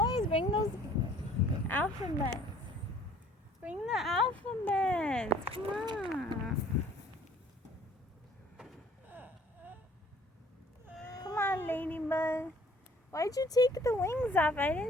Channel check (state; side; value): normal; both; correlation 0.55